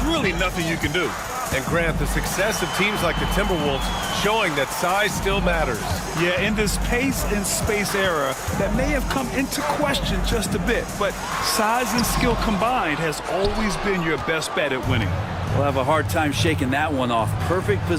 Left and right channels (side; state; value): both; identical; correlation 1.00